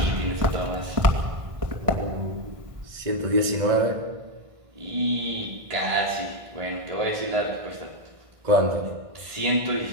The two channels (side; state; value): left; late; 1.6 ms